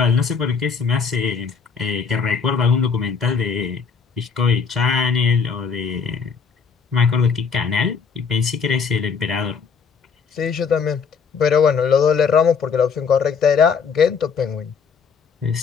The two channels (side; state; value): right; quieter; 5.8 dB